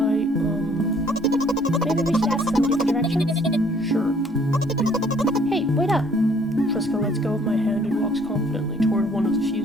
Maybe we should ask somebody for directions? Sure. Hey, wait up. Treska lets go of my hand and walks confidently toward one of the few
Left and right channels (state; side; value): normal; both; correlation 0.60